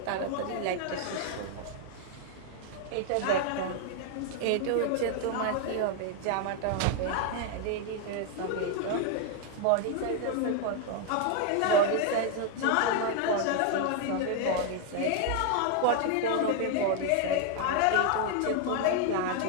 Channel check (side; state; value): both; different; correlation 0.01